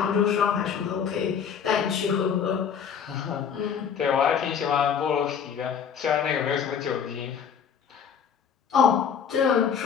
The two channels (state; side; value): quieter; right; 7.5 dB